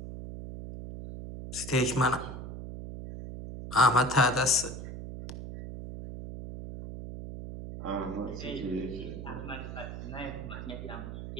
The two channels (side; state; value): right; noise; hum, 8 dB below the sound